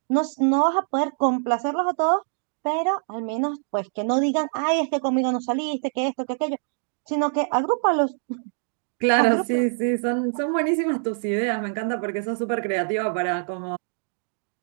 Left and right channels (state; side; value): silent; left; 60 dB below the other